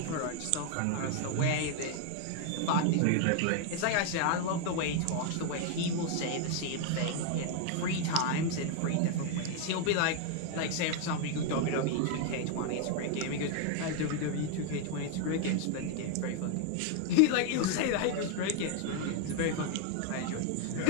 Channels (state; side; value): different; both; correlation 0.00